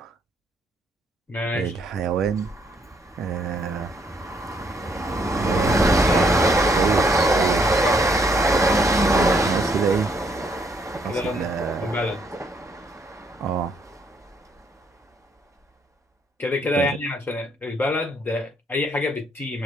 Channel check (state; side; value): normal; both; correlation 0.70